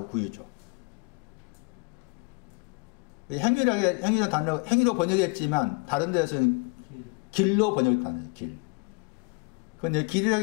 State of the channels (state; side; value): quieter; right; 32.4 dB